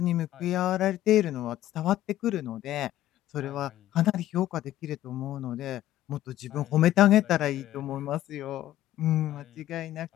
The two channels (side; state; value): right; quieter; 13.6 dB